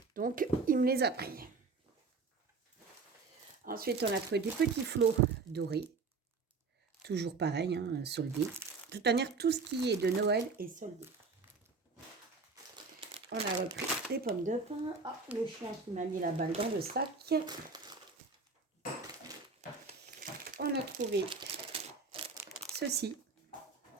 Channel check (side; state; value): left; quieter; 4.3 dB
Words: Donc, il me les a pris. Ensuite, on a trouvé des petits flots dorés. Toujours pareil, hein, soldés. De toute manière, tout ce qui est de Noël est soldé. On a repris des pommes de pin. Ah, le chien qui m'a mis la balle dans le sac. On a trouvé ceci.